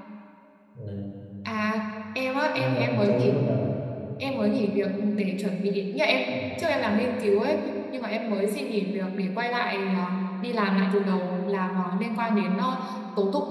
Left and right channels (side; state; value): both; identical; correlation 1.00